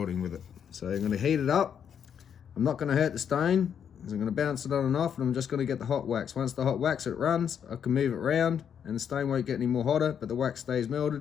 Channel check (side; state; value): right; quieter; 8.1 dB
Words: with it. So I'm going to heat it up. I'm not going to hurt the stone. I'm going to bounce it on and off, and I'm just going to get the hot wax. Once the hot wax it runs, I can move it around and the stone won't get any more hotter, but the wax stays